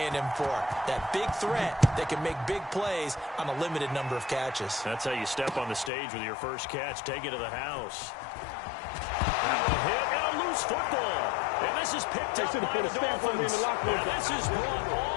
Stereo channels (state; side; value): drops out; right; at 5.9 s